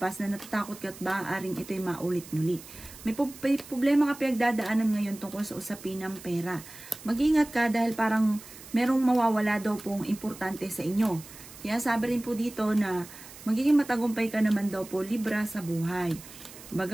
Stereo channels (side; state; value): right; noise; hiss, 17 dB below the sound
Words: na natatakot ka at maaaring ito'y maulit muli. May problema ka pinagdadaanan ngayon tungkol sa usapin ng pera. Mag-ingat ka dahil parang merong mawawala daw pong importante sa inyo. Kaya sabi rin po dito na magiging matagumpay ka naman daw po Libra sa buhay.